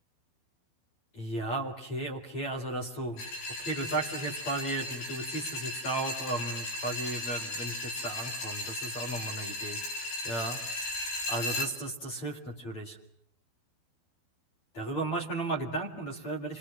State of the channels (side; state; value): right; late; 12 ms